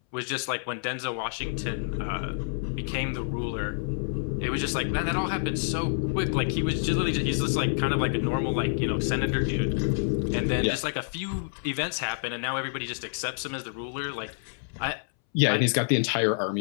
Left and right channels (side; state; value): right; silent; 59 dB below the other